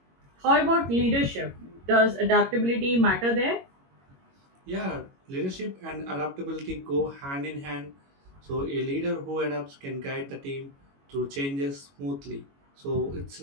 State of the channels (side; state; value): left; late; 22 ms